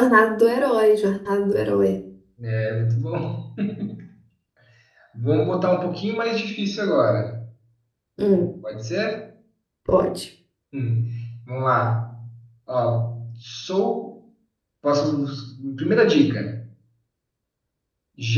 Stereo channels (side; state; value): both; identical; correlation 1.00